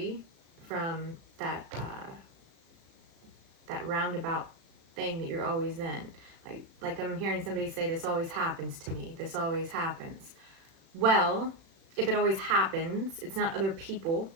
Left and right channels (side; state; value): left; late; 36 ms